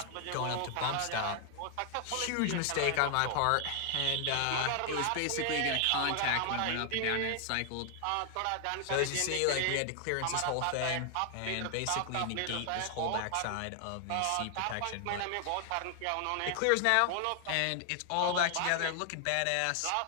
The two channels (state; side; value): different; both; correlation 0.00